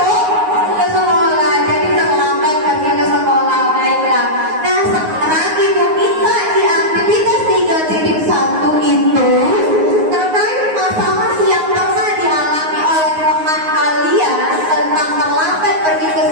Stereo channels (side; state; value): left; late; 9.5 ms